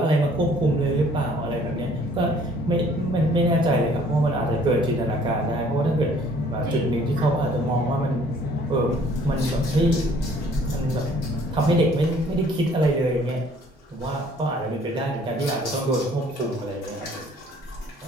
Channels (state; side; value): normal; both; correlation 0.57